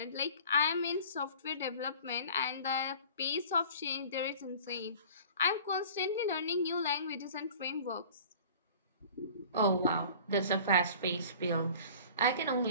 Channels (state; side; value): inverted; both; correlation -0.44